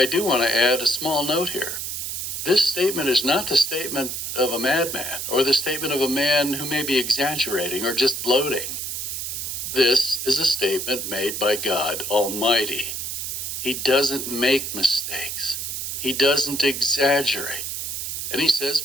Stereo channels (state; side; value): noise; right; hiss, 4 dB below the sound